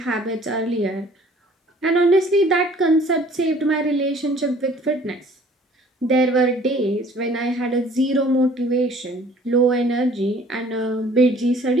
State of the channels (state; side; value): normal; both; correlation 0.54